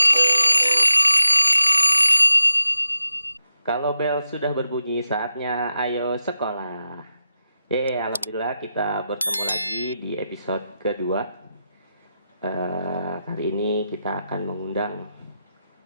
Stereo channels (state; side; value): inverted; both; correlation -0.89